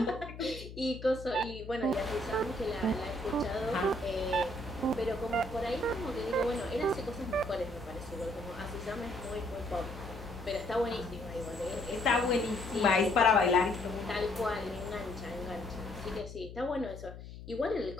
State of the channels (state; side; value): noise; left; hum, 13 dB below the sound